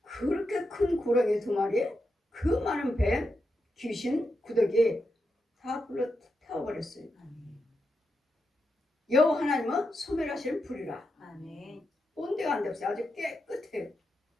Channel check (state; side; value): normal; both; correlation 0.86